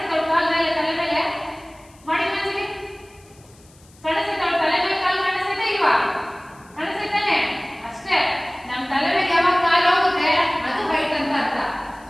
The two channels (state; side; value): noise; left; hiss, 28 dB below the sound